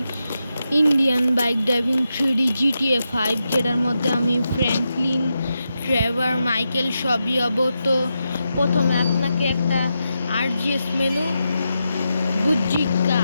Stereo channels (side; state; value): both; inverted; correlation -0.87